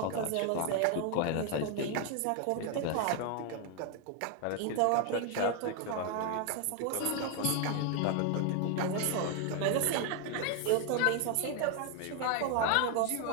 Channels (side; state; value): both; different; correlation 0.01